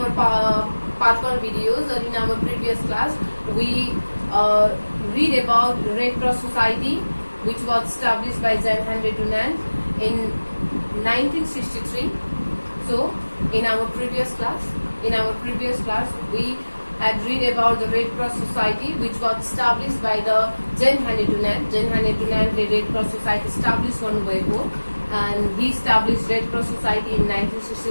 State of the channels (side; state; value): both; inverted; correlation -1.00